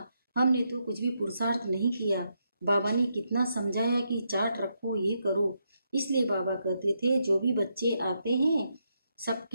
हमने तो कुछ भी पुरुषार्थ नहीं किया। बाबा ने कितना समझाया कि चार्ट रखो, ये करो। इसलिए बाबा कहते थे जो भी बच्चे आते हैं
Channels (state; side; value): inverted; both; correlation -0.81